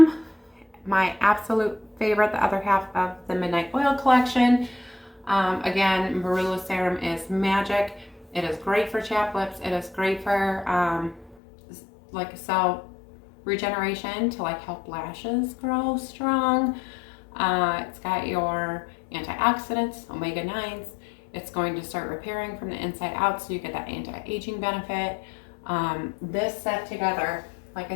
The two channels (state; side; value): drops out; right; at 11.4 s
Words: my absolute favorite, the other half of the Midnight Oil collection. Again, marula serum is magic. It is great for chapped lips. It is great for like cell regeneration to like help lashes grow strong. It's got your antioxidants, omega-9s. It's going to start repairing from the inside out, so you get that anti-aging benefit. This set together, like